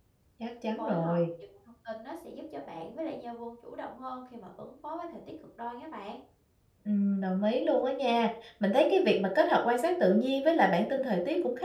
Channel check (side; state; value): both; identical; correlation 1.00